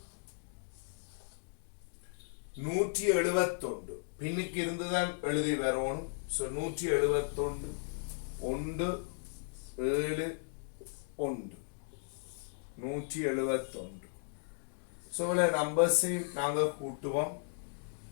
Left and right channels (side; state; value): right; silent; digital silence